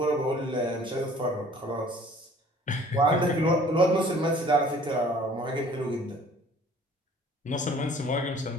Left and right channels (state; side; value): normal; both; correlation 0.53